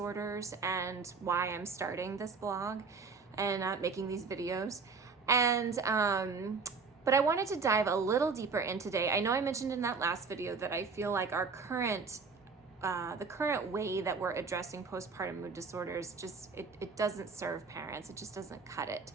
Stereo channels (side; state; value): left; quieter; 4.8 dB